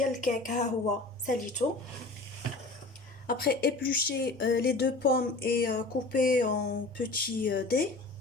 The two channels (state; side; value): quieter; right; 3.2 dB